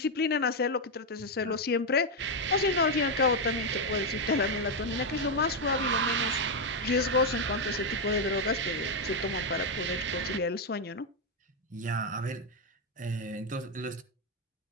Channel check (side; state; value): both; normal; correlation 0.03